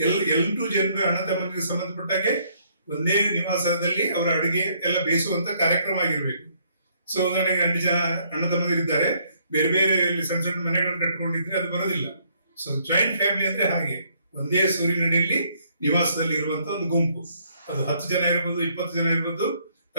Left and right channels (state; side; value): inverted; both; correlation -0.67